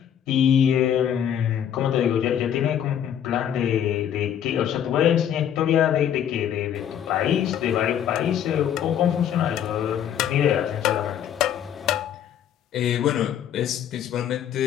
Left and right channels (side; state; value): right; quieter; 9.6 dB